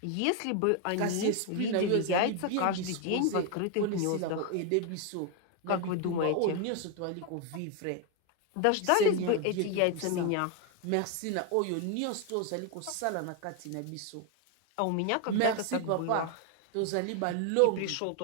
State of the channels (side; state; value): both; different; correlation 0.01